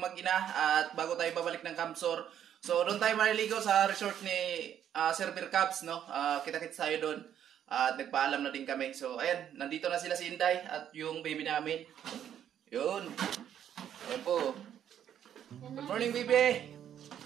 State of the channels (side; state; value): left; quieter; 9.9 dB